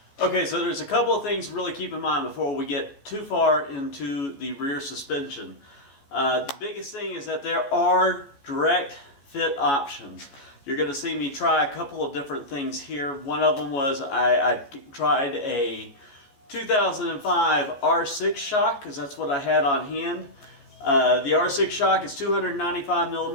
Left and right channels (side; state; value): right; late; 15 ms